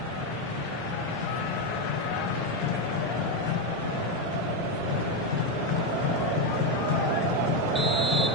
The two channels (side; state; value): both; normal; correlation 0.07